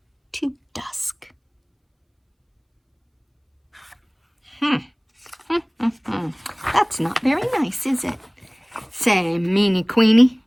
to dusk. That's not very nice, is it? Say, meanie queenie.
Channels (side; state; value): both; identical; correlation 1.00